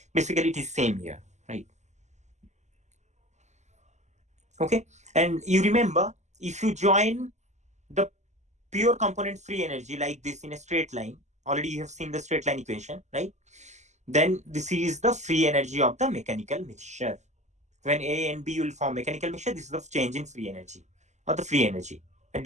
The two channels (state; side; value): late; left; 0.33 ms